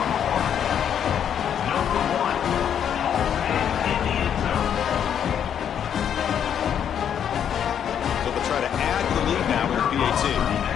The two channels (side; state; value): right; quieter; 8.9 dB